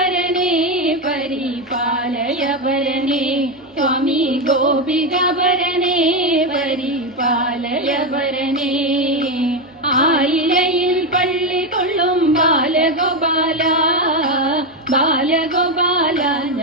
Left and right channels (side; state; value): both; normal; correlation 0.10